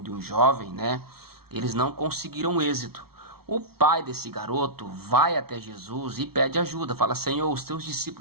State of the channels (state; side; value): late; left; 0.95 ms